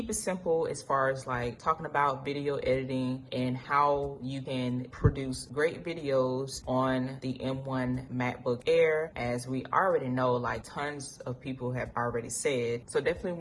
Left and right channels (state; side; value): identical; both; correlation 1.00